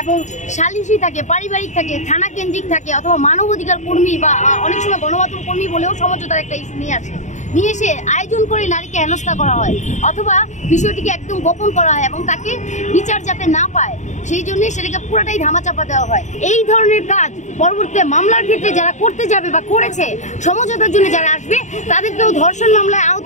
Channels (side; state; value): right; late; 0.34 ms